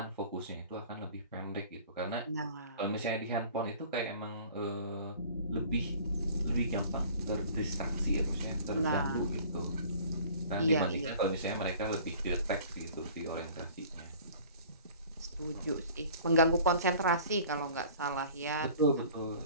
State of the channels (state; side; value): inverted; both; correlation -0.47